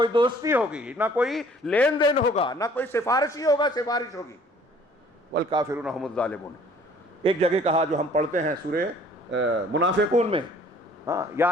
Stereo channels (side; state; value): both; normal; correlation 0.55